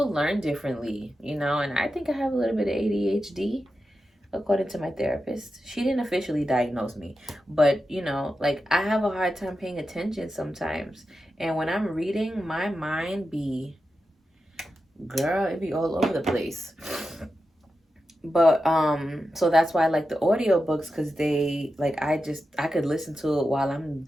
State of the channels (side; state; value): both; normal; correlation 0.90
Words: learn differently, you know, and I think I have a little bit of ADHD according to my therapist. She didn't officially diagnose me, but you know, like I have a hard time paying attention sometimes. And when I'm reading, my mind be, girl, it be all over the place. But so that's why I like the audiobooks, because they like I could listen to it while I'm